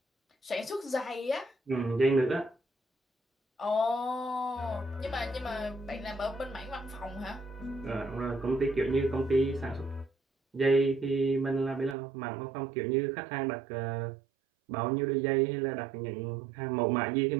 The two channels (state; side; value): drops out; left; at 12.0 s